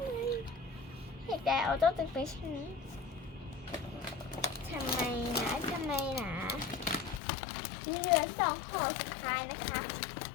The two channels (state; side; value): drops out; right; at 7.2 s